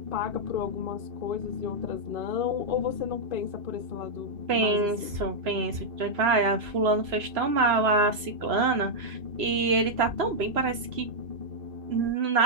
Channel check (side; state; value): left; late; 3.0 ms